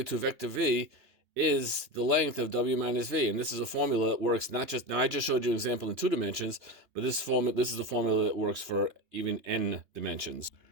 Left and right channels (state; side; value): late; left; 3.2 ms